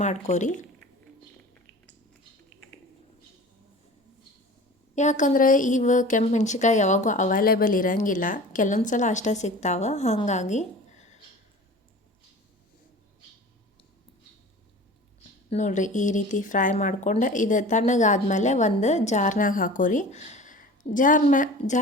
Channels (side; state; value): both; normal; correlation 0.40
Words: ಮಾಡ್ಕೊರಿ. ಯಾಕಂದ್ರೆ ಇವು ಕೆಂಪು ಮೆಣಸಿನ್ಕಾಯಿ ಯಾವಾಗೂ ಅವೈಲೇಬಲ್ ಇರೋಂಗಿಲ್ಲ, ಕೆಲವೊಂದು ಸಲ ಅಷ್ಟೇ ಸಿಗ್ತಾವೆ. ಹಾಗಾಗಿ ನೋಡಿರಿ, ಈ ರೀತಿ ಫ್ರೈ ಮಾಡ್ಕೊಂಡು ಇದು ತಣ್ಣಗಾದ್ಮೇಲೆ ಒಂದು ಜಾರ್ನಾಗ ಹಾಕೋರಿ.